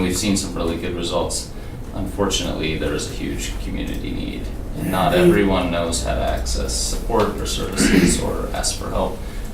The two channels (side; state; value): both; identical; correlation 1.00